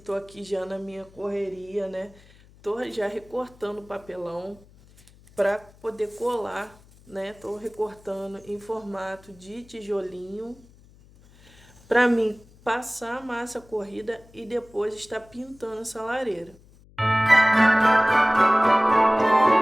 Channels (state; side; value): noise; left; hum, 26 dB below the sound